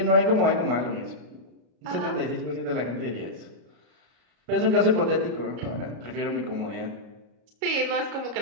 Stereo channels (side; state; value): left; late; 33 ms